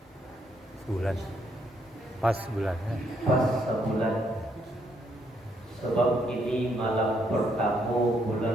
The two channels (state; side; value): normal; both; correlation 0.73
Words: Sebulan. Pas bulannya. Pas sebulan. Sebab ini malam pertama